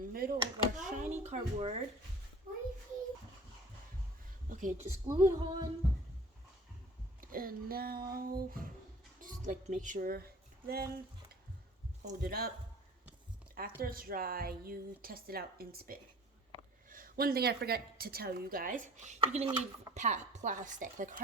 of our shiny cardboard. Okay, just glue it on. And now, just like make sure, then hold it up. After it's dry, you test it out and spin. One thing I forgot to tell you guys, you're gonna need plastic, like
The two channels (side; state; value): both; normal; correlation 0.47